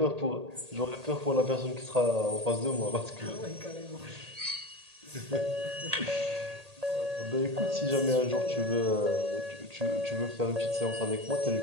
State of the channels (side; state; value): left; late; 1.8 ms